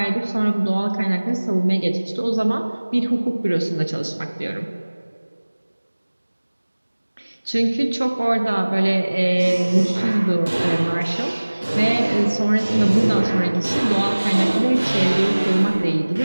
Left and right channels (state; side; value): inverted; both; correlation -1.00